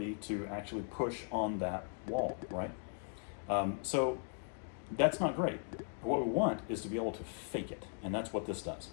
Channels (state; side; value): silent; right; 52 dB below the other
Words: to actually push on that wall, right? So that's not great. What we want is to be able to fake it, and that's what this does.